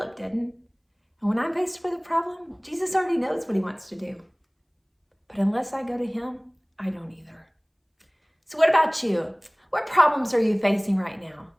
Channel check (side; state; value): both; identical; correlation 1.00